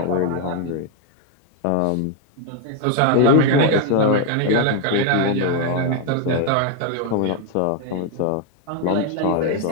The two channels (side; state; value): both; different; correlation 0.00